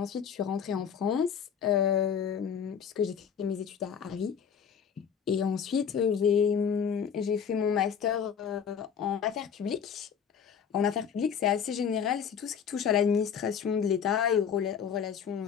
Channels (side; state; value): right; quieter; 7.5 dB